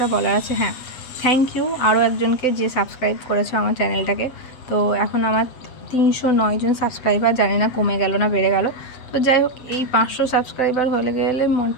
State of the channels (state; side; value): late; right; 7.8 ms